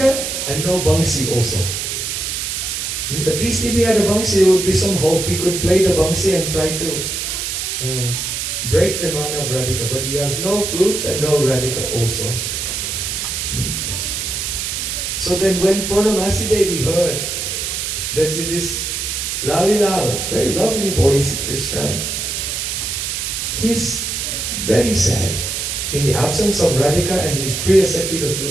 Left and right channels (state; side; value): noise; right; hiss, 3 dB below the sound